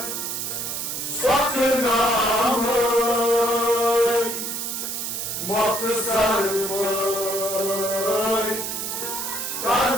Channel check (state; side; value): noise; right; hiss, 4 dB below the sound